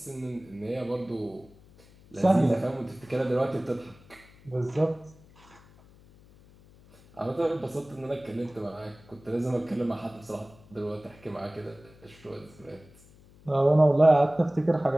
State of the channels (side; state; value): left; noise; hum, 25 dB below the sound